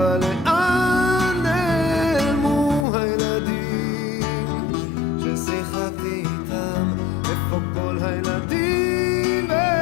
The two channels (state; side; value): drops out; right; at 2.9 s